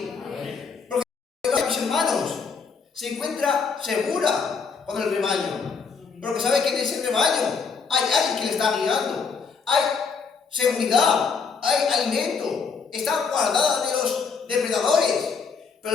Porque, mis hermanos, se encuentra segura con el rebaño. Porque sabe que en ese rebaño hay alguien que le está guiando. Hay seguridad, hay alimento. Está guardada de los depredadores. Pero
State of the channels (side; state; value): right; quieter; 5.5 dB